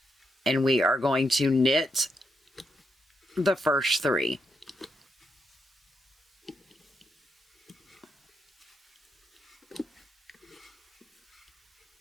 and we are going to knit the first 3.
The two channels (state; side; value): normal; both; correlation 0.82